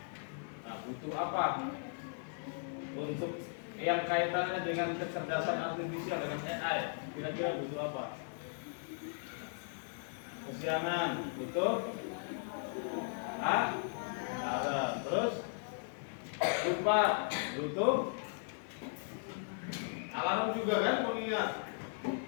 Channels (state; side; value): silent; right; digital silence